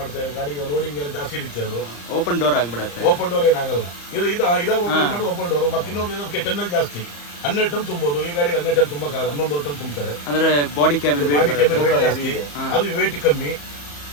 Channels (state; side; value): late; right; 34 ms